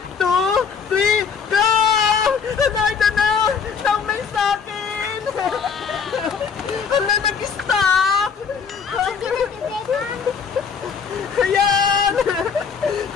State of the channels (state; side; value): quieter; right; 6.2 dB